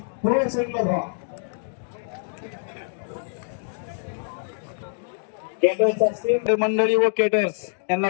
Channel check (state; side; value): silent; right; digital silence